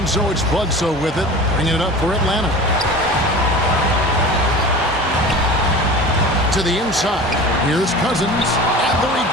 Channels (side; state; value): both; normal; correlation 0.36